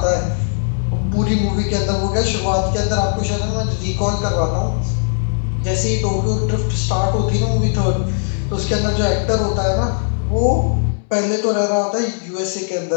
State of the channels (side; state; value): right; silent; 65 dB below the other